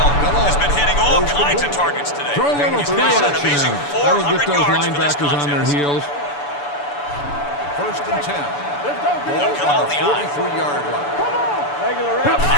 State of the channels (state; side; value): late; right; 6.9 ms